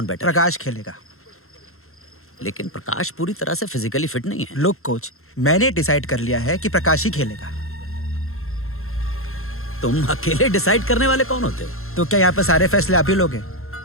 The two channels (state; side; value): late; right; 0.62 ms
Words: बेटर? प्रकाश खेलेगा। लेकिन प्रकाश पूरी तरह से फिजिकली फिट नहीं है। लुक कोच, मैंने डिसाइड कर लिया है कि प्रकाश ही खेलेगा। तुम अकेले डिसाइड करने वाले कौन होते हो? तो क्या यहाँ पे सारे फैसले आप ही लोगे?